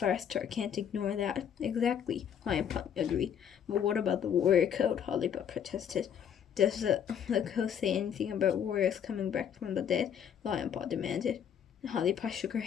can't ignore that. Exactly, Lionpaw agreed. But what about the warrior code? Hollypaw protested. Does the code say anything about warriors coming back from the dead? Lionpaw demanded. Hollypaw shook her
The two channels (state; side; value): quieter; right; 8.5 dB